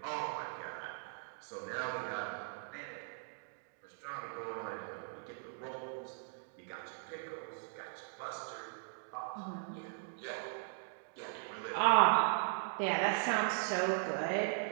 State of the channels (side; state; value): left; silent; digital silence